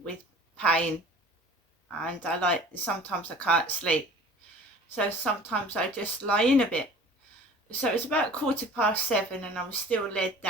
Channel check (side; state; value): both; normal; correlation 0.45